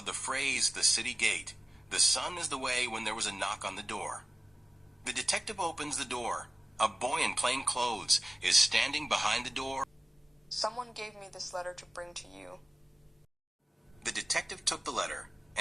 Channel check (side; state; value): both; normal; correlation 0.97